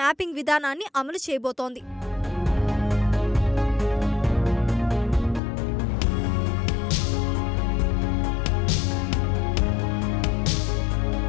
విధానాన్ని అమలు చేయబోతోంది.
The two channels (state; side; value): drops out; right; at 5.4 s